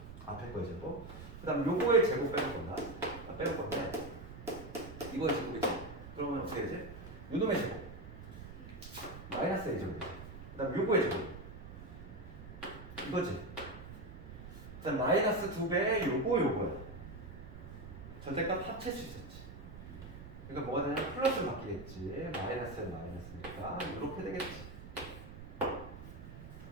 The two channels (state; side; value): noise; right; rumble, 13 dB below the sound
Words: 앞에 거의 제곱. 그 다음 요거의 제곱 빼볼 건데 이거의 제곱이지. 그러면 어떻게 되지? 요놈의 제곱 마이너스 A 제곱. 그 다음 요거의 제곱 이거지. 그 다음 마이너스 2배의 요거야. 절대값 합칠 수 있었지. 그러니까 뭐가 되냐면 플러스로 바뀌겠지. 마이너스에 마이너스니까 이렇게 되겠지.